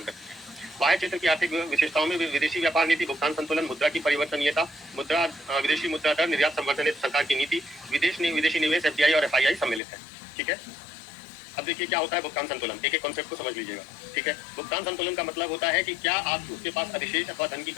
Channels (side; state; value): right; drops out; at 9.8 s